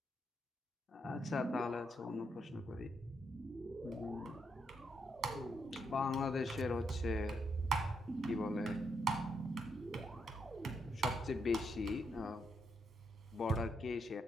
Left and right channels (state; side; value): normal; both; correlation 0.79